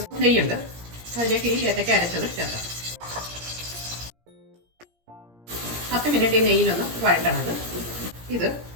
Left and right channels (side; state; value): left; late; 17 ms